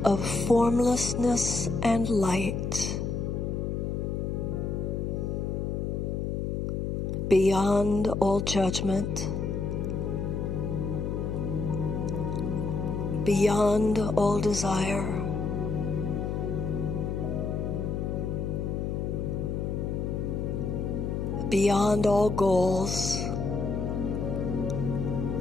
of formlessness and light, beyond all judgment, beyond all desire, beyond all goals,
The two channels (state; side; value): noise; left; hum, 1 dB below the sound